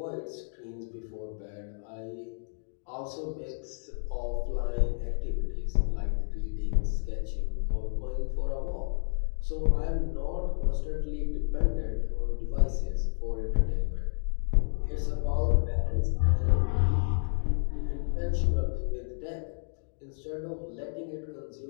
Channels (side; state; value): right; silent; digital silence